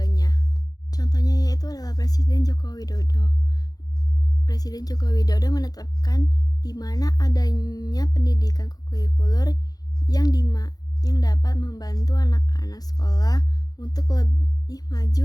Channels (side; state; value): right; late; 0.18 ms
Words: Contohnya yaitu adalah Presiden Joko Widodo. Presiden Joko Widodo menetapkan di mana adanya pendidikan kurikuler yang dapat membantu anak-anak sekolah untuk lebih